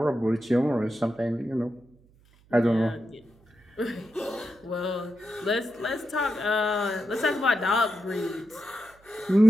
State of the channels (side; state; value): right; noise; hum, 30 dB below the sound